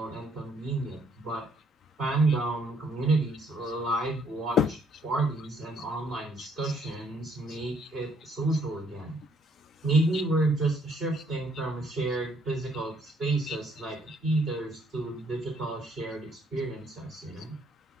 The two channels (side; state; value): both; normal; correlation 0.67